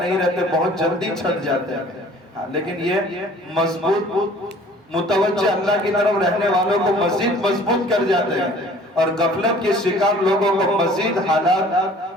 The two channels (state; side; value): normal; both; correlation 0.51